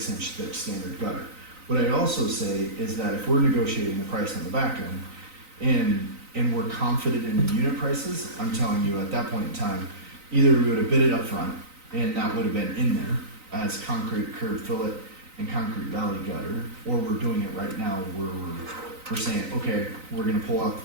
inch thick standard gutter. What I'd also say is that if we're negotiating the price on the back end, and we're confident in the unit prices, I'm telling you, at that point in time, either we would have bid it up front, and that would have been in there as concrete curb fillet and concrete valley gutter, or we're doing it right now where we're saying, okay, we're gonna pull out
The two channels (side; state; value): left; late; 3.9 ms